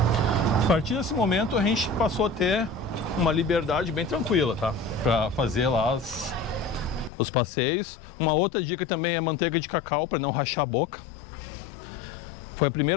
A partir desse momento a gente passou a ter uma liberdade bem tranquila, tá? Pra fazer lá os passeios. Uma outra dica também é manteiga de cacau para não rachar a boca. Foi a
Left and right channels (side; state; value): right; drops out; at 7.1 s